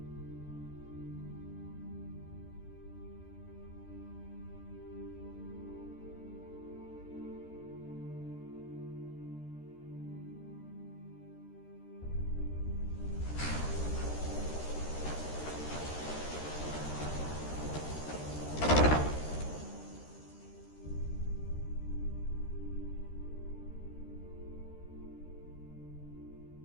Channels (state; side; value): late; right; 13 ms